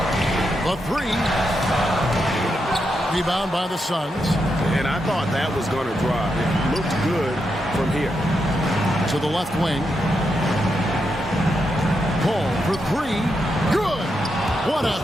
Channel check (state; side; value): normal; both; correlation 0.84